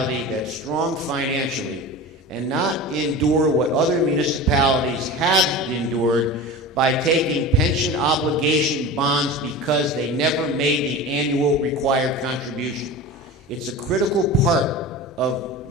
that's strong financially and not endure what other municipalities have endured by taking pension obligation bonds because they never made the annual required contribution. It's a critical part of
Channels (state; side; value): normal; both; correlation 0.31